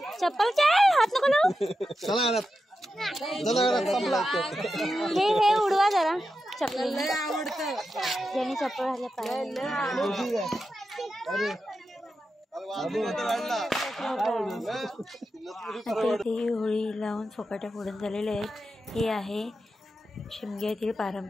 चप्पल क्या हात नको लावू। हे उडवा जरा चप्पल, ज्याने चप्पल घातल्या पाहिजे। ही होळी लावून फुकट्या फोडून झालेले आहेत। हे आहे शिमग्यातील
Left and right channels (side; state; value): both; normal; correlation 0.89